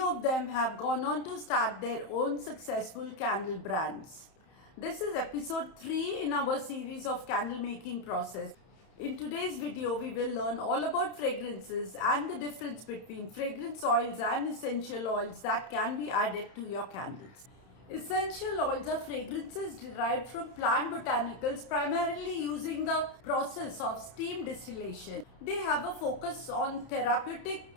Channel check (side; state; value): right; late; 31 ms